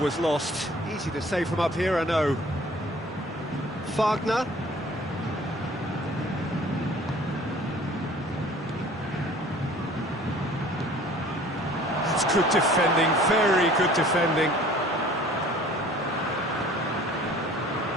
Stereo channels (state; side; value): normal; both; correlation 0.50